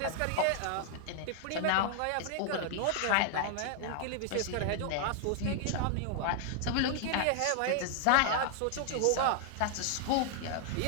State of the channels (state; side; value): different; both; correlation 0.00